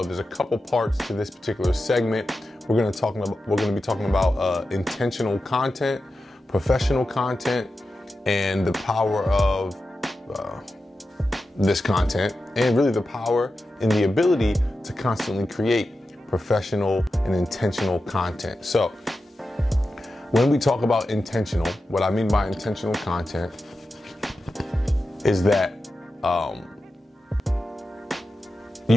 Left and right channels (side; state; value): both; normal; correlation 0.91